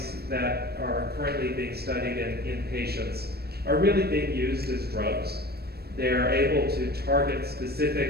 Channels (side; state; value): left; late; 0.46 ms